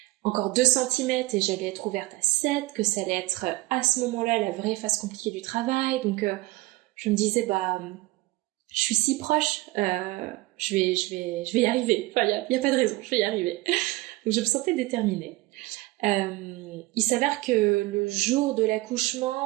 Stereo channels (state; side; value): quieter; left; 20.4 dB